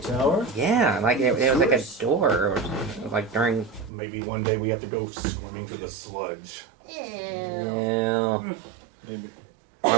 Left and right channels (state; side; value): drops out; left; at 3.9 s